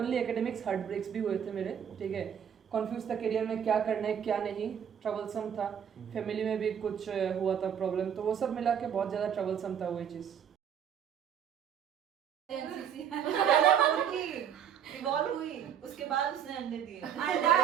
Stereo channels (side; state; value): left; quieter; 8.6 dB